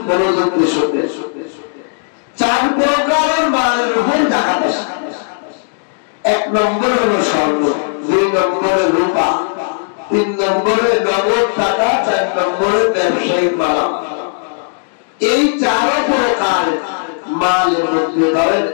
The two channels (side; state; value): right; silent; digital silence